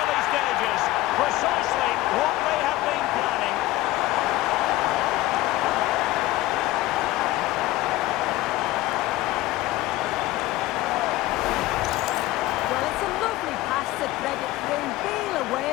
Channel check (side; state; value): right; quieter; 17.3 dB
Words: stages. Precisely what they have been planning. Well, it's a lovely pass to thread it through. Real